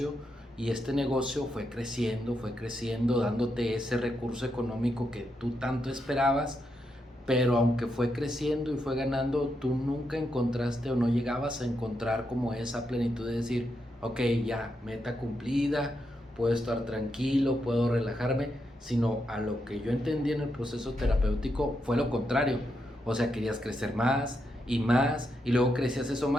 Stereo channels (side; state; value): both; normal; correlation 0.83